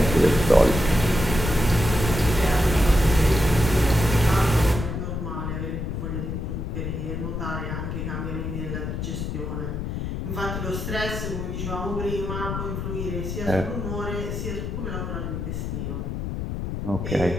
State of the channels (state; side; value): noise; left; rumble, 4 dB below the sound